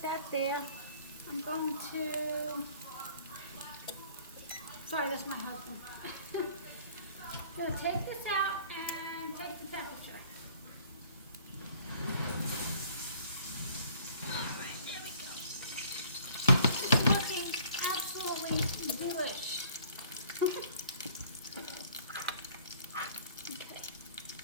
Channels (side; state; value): both; inverted; correlation -0.55